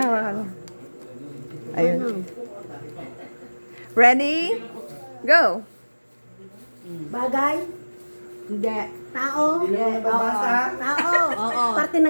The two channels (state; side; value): inverted; both; correlation -1.00